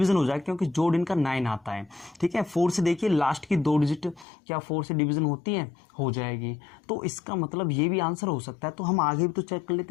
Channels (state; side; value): drops out; right; at 4.2 s